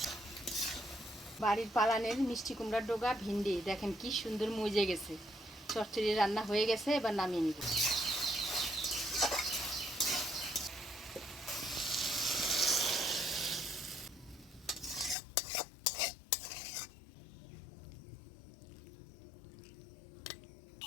বাড়ির পালানের মিষ্টি কুমড়ার ডোগা ভিন্ডি দেখেন কি সুন্দর মজে গেছে। চচ্চড়ি রান্না হয়ে গেছে, এবার নামিয়ে নিব।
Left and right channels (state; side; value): drops out; right; at 15.2 s